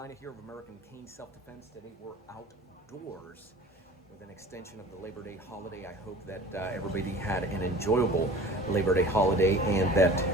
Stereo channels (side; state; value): both; normal; correlation 0.42